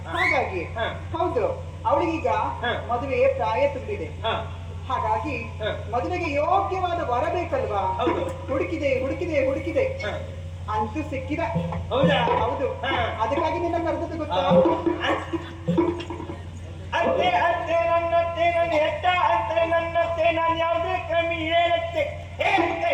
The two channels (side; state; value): both; identical; correlation 1.00